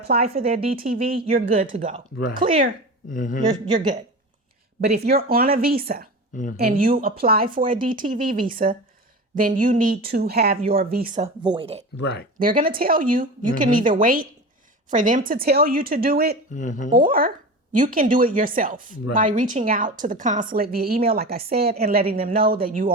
for their DTV, you're good to go. Right. Clear. You're good. But if you're on a visa and you apply for a DTV visa, then you need to have your visa voided. Right. They're going to tell you, you can either wait for them to tell you to do it, or you can do it yourself by reaching out to the consulate via email, like I said, and letting them know that you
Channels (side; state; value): both; normal; correlation 0.30